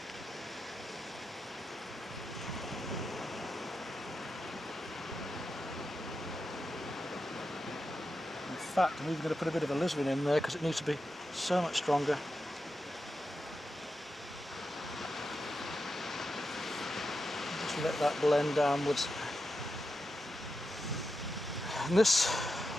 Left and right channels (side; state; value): both; normal; correlation 0.89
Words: fact, I'm even going to put a bit of alizarin in there because it needs to be so much stronger. Just let that blend downwards. And this